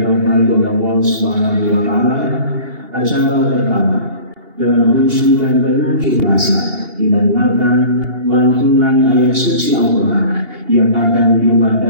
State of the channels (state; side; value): late; left; 2.8 ms